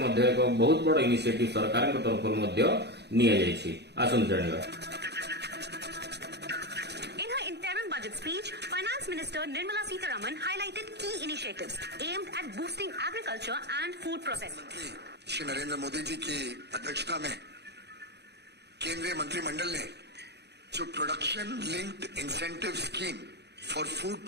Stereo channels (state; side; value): late; left; 0.49 ms